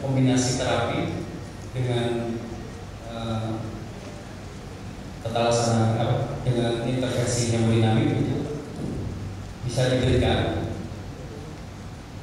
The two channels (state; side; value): identical; both; correlation 1.00